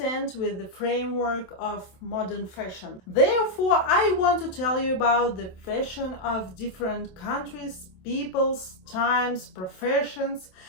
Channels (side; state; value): right; late; 27 ms